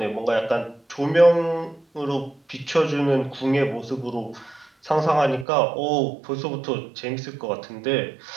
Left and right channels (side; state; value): left; drops out; at 5.5 s